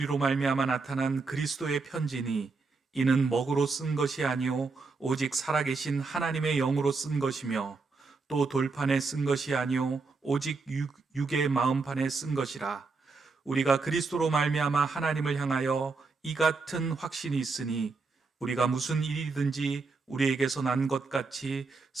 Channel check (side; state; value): left; quieter; 4.2 dB